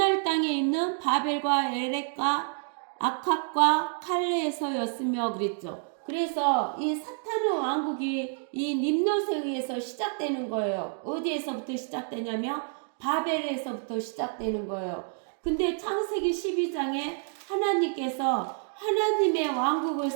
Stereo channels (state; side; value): silent; left; 59 dB below the other